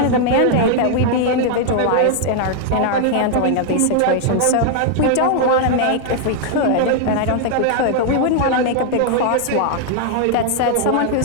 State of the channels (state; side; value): different; both; correlation 0.00